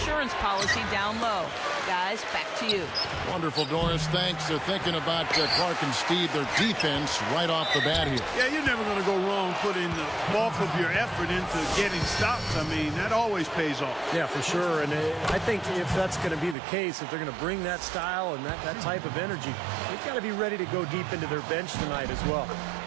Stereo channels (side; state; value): left; drops out; at 16.6 s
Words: policy down low. Guys, back to you. Wonderful, Doris. Thanks. They're thinking about Clark and Steve, their defense, right off the bat here. Yeah, you're never going to go wrong putting the bulk of your effort into getting stops. I mean, that always pays off. Yeah, for sure. And I think if that's going to be the case, if they're going to bring that style and that type of energy, they've got to be ready to go deep into their bench tonight as well.